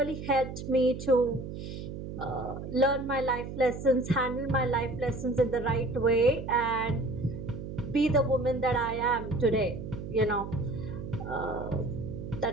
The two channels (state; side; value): noise; right; hum, 8 dB below the sound